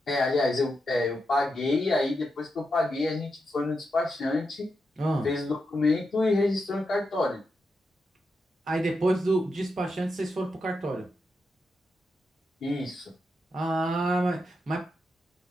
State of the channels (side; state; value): both; normal; correlation 0.86